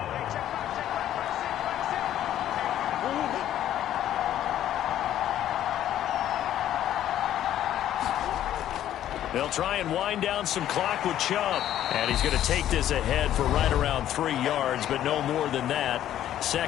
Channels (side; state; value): right; quieter; 11.8 dB